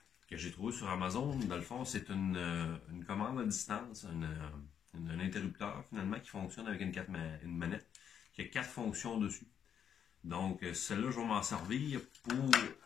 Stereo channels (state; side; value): quieter; right; 8.4 dB